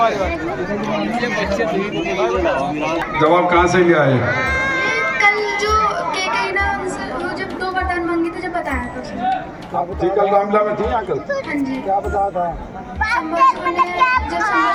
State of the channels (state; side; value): identical; both; correlation 1.00